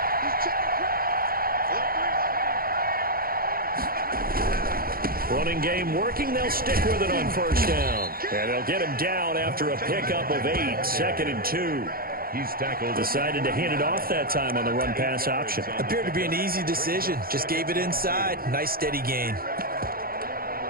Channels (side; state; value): left; late; 0.43 ms